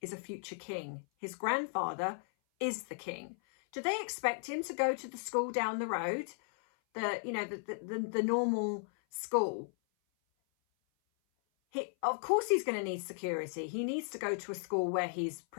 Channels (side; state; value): right; silent; 54 dB below the other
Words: is a future king. His grandfather is the king. Do they expect him to go to the school down the road? The normal school? Of course he's going to need security. He needs to go to a school where he's